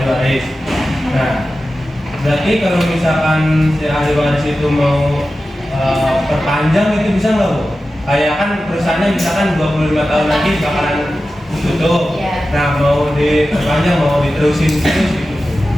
waris. Nah berarti kalau misalkan si ahli waris itu mau perpanjang itu bisa nggak Bu? Kayak kan perusahaannya misalkan 25 tahun lagi bakalan tutup. Ya. Nah mau diperpanjang, mau diterusin terus gitu.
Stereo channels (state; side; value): normal; both; correlation 0.94